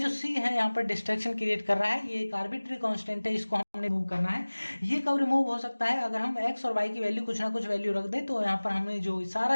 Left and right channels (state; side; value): inverted; both; correlation -1.00